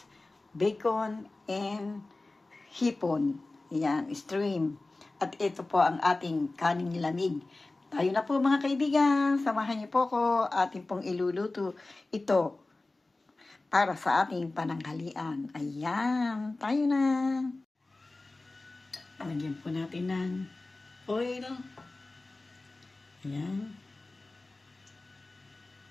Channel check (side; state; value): right; quieter; 3.1 dB